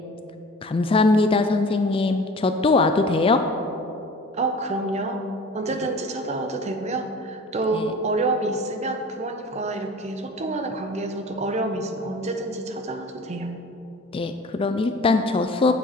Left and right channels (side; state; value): both; normal; correlation 0.41